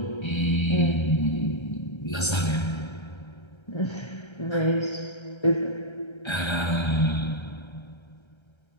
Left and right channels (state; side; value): late; right; 1.3 ms